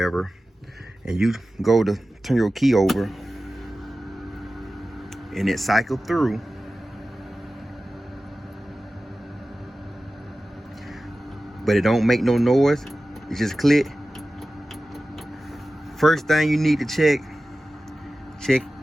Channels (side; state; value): both; normal; correlation 0.95